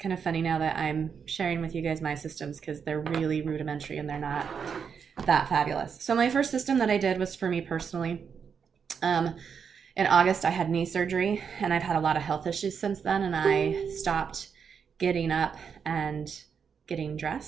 of funny now that I'm sharing with you guys my systems because they're really rudimentary and they're not that fabulous. So my first system that I did was for me personally. In August, I had knee surgery and I've had a lot of health issues since then, and I stopped getting up and getting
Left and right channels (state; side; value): quieter; left; 6.6 dB